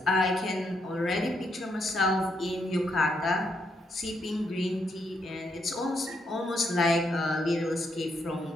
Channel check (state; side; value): normal; both; correlation 0.78